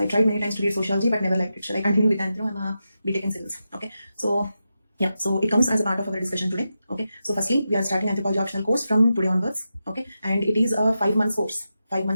tried many times to read sociology but never liked it. Shall I continue with anthro? I'm a BTech in civils. Okay. So yeah, so it comes as a part of our discussion today. Okay. So firstly, we are starting anthropology optional course from today onwards. Okay. And it is a 5 months course. 5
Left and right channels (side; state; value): both; inverted; correlation -0.89